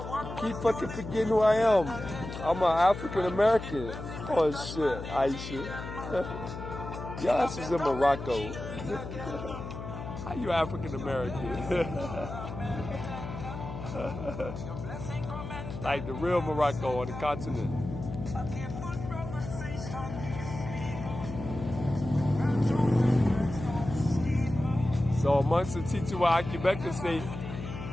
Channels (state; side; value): noise; left; hum, 8 dB below the sound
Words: keep fucking forgetting who I am. I'm an African American. Oh shit, Aisha. Y'all is in Morocco. How you African American? Like the real Morocco on the continent. So amongst the teacher what Akae Beka say,